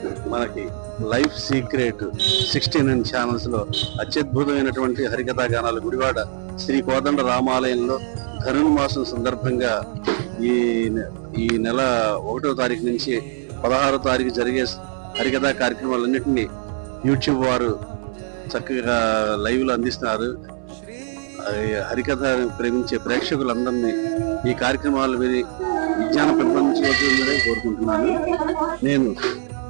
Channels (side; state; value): left; silent; 58 dB below the other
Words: మనకి లైఫ్ సీక్రెట్ 69 ఛానల్స్ లో అత్యద్భుతమైనటువంటి హరికథా గానాలు గుడివాడ శ్రీ కోదండ రామాలయంలో ధనుర్మాసం సందర్భంగా ఈ నెల 1వ తారీఖు నుంచి 16వ తారీఖు జరిగే హరికథా కార్యక్రమాలన్నింటినీ యూట్యూబ్ వారు చక్కగా లైవ్ లో అందిస్తున్నారు. హరికథ ప్రేమించే ప్రేక్షకులందరినీ ఈ కార్యక్రమాలు విని విజ్ఞానం పెంపొందించవలసిందని కోరుకుంటున్నాను. నేను